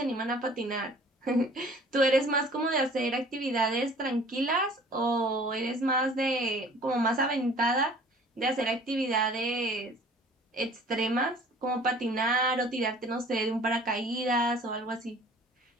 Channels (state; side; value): normal; both; correlation 0.50